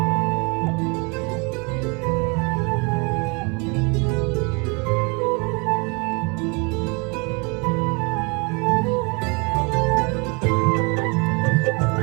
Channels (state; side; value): quieter; left; 31.1 dB